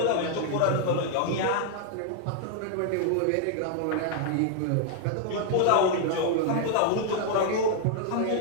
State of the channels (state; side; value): different; both; correlation 0.00